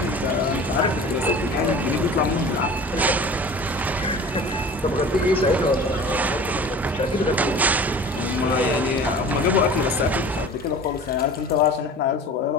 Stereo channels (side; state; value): both; normal; correlation 0.40